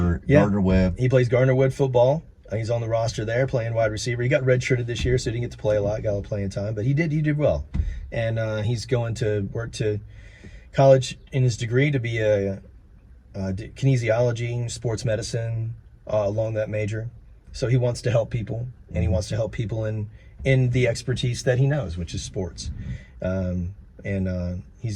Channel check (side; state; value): both; identical; correlation 1.00